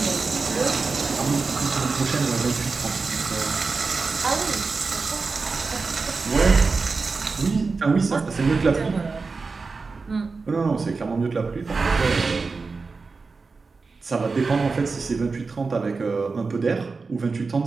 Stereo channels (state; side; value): quieter; left; 4.3 dB